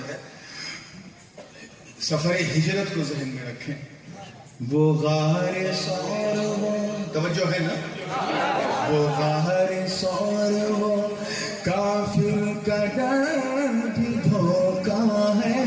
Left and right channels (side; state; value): both; identical; correlation 1.00